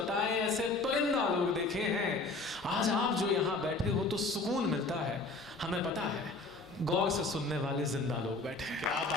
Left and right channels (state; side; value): quieter; right; 3.3 dB